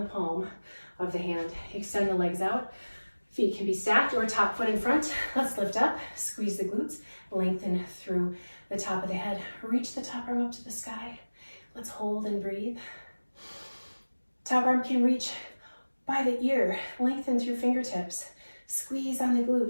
palm of the hand. Extend the legs out. Feet can be stacked or top foot in front. Let's lift up, squeeze the glutes, lengthen through the top of the head. Reach the top arm up to the sky. Let's hold and breathe. Top arm can reach by the ear. Lengthen through fingertips. Squeeze on the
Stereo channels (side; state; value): both; inverted; correlation -1.00